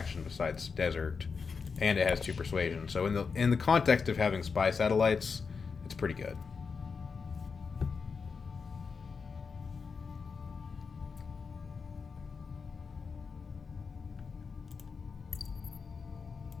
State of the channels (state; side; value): quieter; right; 5.3 dB